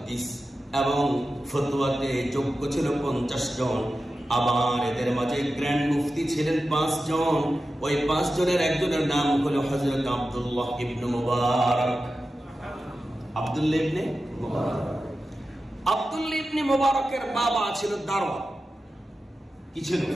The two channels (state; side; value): normal; both; correlation 0.93